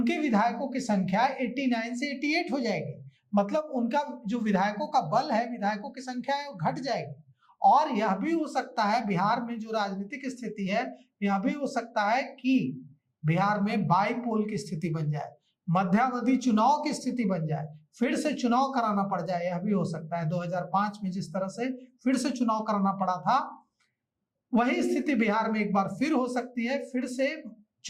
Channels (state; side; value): identical; both; correlation 1.00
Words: विधायकों की संख्या 89 से 88 हो जाएगी। मतलब उनका जो विधायकों का बल है, विधायकों की संख्या है, वो घट जाएगी। और यह भी हो सकता है, बिहार में जो राजनीतिक स्थिति है, यह भी हो सकता है कि बिहार में बाईपोल की स्थिति बन जाए, मध्यावधि चुनाव की स्थिति बन जाए, फिर से चुनाव कराना पड़ जाए। यह भी हो सकता है 2005 में जिस तरह से फिर से चुनाव कराना पड़ा था, वही स्थिति बिहार में एक बार फिर हो सकती है। फिर से